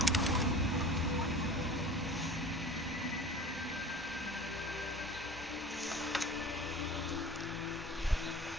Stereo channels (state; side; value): normal; both; correlation 0.39